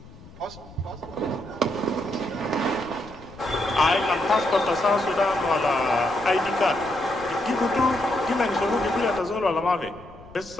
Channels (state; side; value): noise; left; rumble, 20 dB below the sound